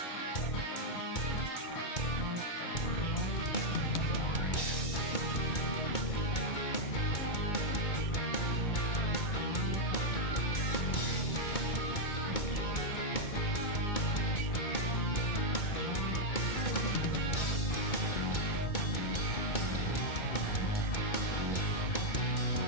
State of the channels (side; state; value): right; late; 2.2 ms